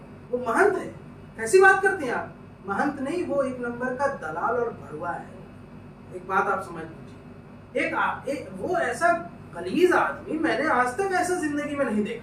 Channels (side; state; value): both; identical; correlation 1.00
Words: वो महंत है? कैसी बात करते हैं आप? महंत नहीं, वो एक नंबर का दलाल और भड़ुआ है। एक बात आप समझ लीजिए, एक वो ऐसा गलीज आदमी मैंने आज तक ऐसा जिंदगी में नहीं